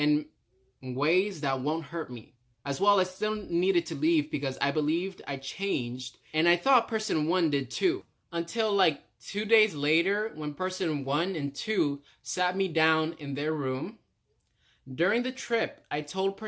ways that won't hurt me. As well, I still needed to leave because I believed I changed, and I thought person one did too. Until like 2 days later, when person one and two sat me down in their room. During the trip, I told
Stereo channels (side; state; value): both; identical; correlation 1.00